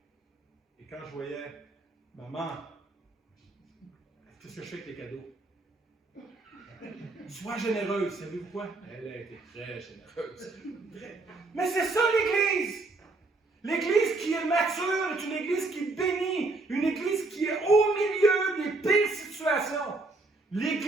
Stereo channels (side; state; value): left; quieter; 3.3 dB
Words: Et quand je voyais maman, qu'est-ce que je fais avec les cadeaux? Sois généreuse, savez-vous quoi? Elle a été très généreuse. Mais c'est ça l'Église! L'Église qui est mature est une Église qui bénit, une Église qui est au milieu des pires situations.